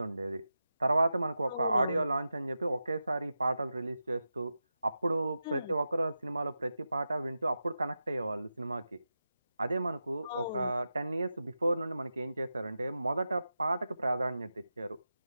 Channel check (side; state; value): both; inverted; correlation -0.91